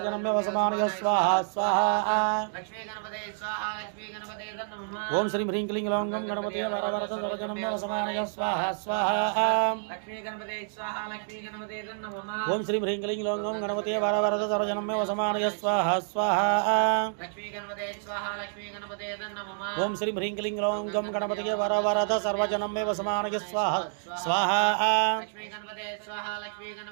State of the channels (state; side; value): silent; left; digital silence